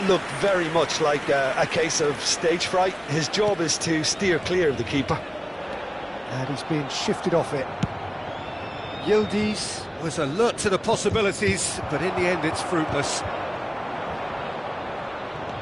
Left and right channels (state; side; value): identical; both; correlation 1.00